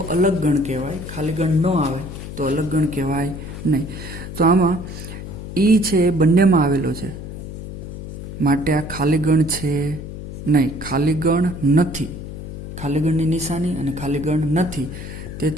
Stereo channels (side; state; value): left; noise; hum, 10 dB below the sound